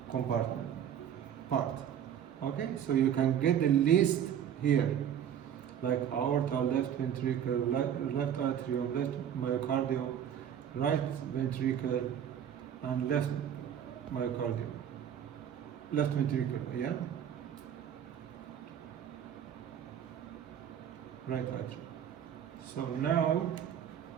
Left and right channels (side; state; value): left; quieter; 9.3 dB